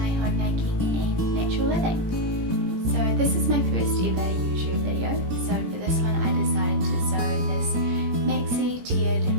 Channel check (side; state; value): left; late; 17 ms